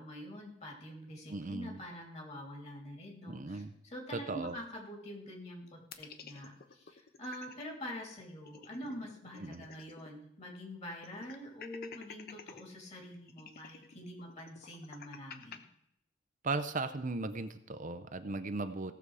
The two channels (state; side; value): normal; both; correlation 0.34